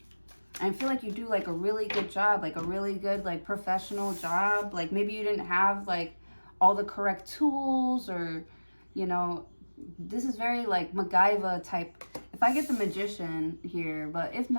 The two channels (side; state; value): both; inverted; correlation -1.00